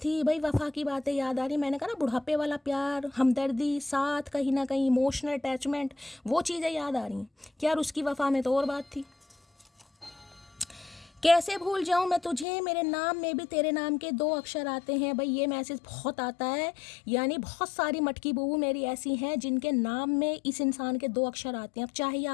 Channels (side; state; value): right; drops out; at 12.5 s